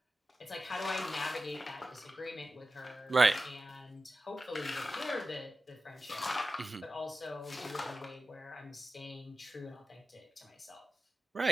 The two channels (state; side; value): normal; both; correlation 0.93